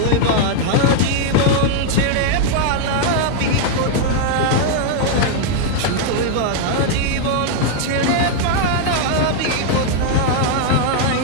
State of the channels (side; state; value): both; different; correlation 0.00